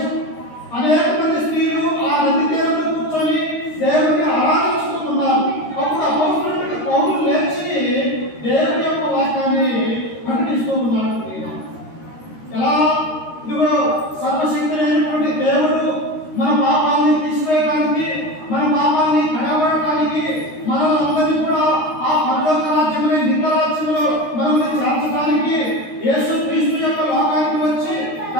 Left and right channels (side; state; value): right; late; 13 ms